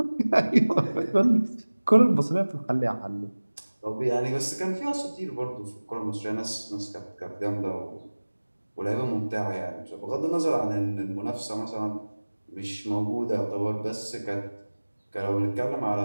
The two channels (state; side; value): inverted; both; correlation -1.00